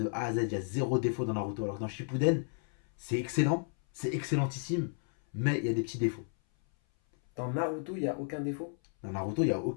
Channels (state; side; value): silent; right; 56 dB below the other